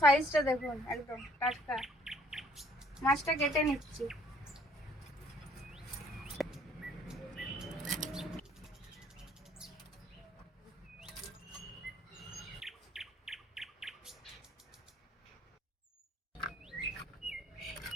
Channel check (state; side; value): normal; both; correlation 0.60